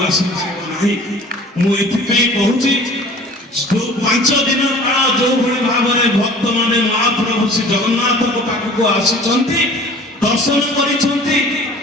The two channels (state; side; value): normal; both; correlation 0.46